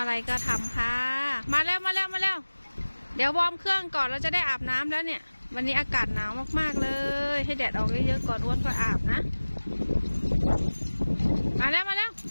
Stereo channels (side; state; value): both; inverted; correlation -1.00